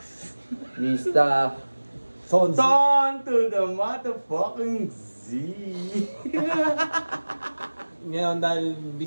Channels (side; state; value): both; inverted; correlation -1.00